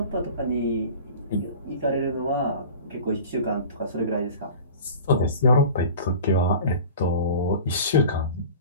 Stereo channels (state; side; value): inverted; both; correlation -0.39